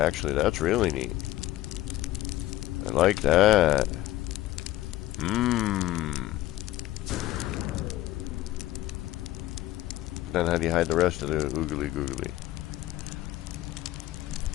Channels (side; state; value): right; quieter; 15.6 dB